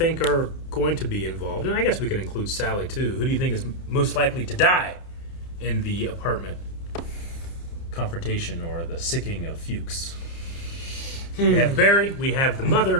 are going to be involved, and I guess we can include Sally too, who do you think is most likely to die in the apartment confrontation or the sicking of Fuchs? We have Barry, we have the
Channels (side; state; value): right; late; 30 ms